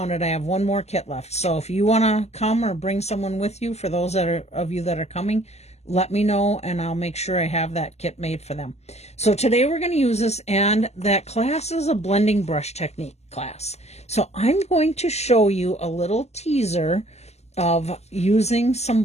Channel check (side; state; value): right; late; 0.31 ms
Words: it, I have one more kit left. So if you want to come or bring someone with you, for those of you that are coming, let me know and I'll make sure I have that kit made for them. So today we're going to use this, and that class is a blending brush technique class. So I'm going to show you a little teaser of using